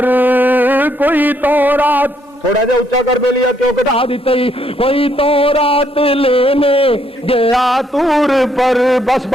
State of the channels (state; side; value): normal; both; correlation 0.72